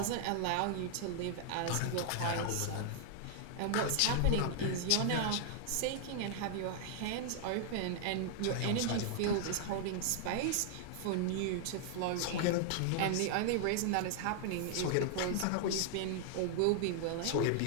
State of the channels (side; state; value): both; different; correlation 0.00